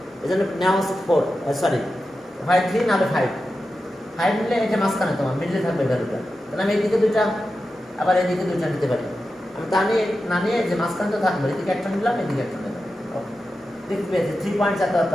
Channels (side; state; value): both; normal; correlation 0.91